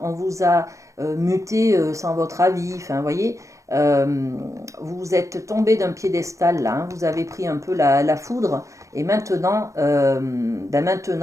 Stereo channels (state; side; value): late; left; 0.15 ms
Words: vous a muté sans votre avis, enfin, vous voyez, vous êtes tombé d'un piédestal là, hein, vous avez pris un peu la foudre, et maintenant,